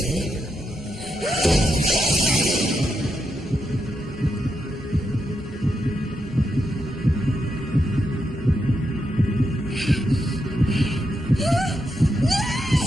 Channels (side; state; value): both; normal; correlation 0.83